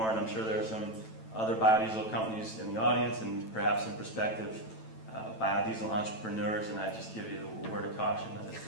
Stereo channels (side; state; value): right; late; 9.1 ms